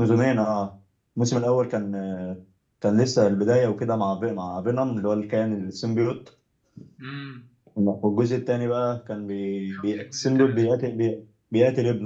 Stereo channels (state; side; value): identical; both; correlation 1.00